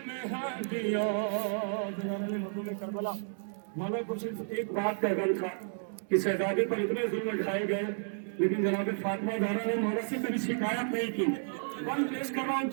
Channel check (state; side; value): silent; left; digital silence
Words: में हड्डियां। करबला मौला कुछ एक बात का गल था कि शहजादे पर इतने जुल्म ढाए गए, लेकिन जनाब फातिमा ज़हरा ने मौला से कभी शिकायत नहीं की। वन पेश कर रहा हूँ,